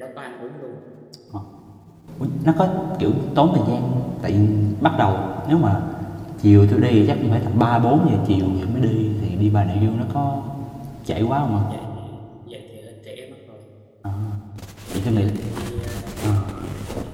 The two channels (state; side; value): identical; both; correlation 1.00